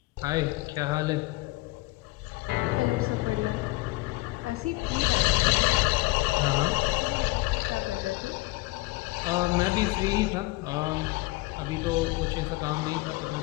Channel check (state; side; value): quieter; right; 22.3 dB